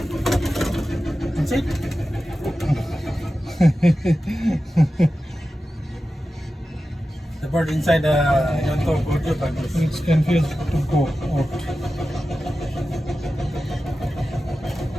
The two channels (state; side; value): normal; both; correlation 0.93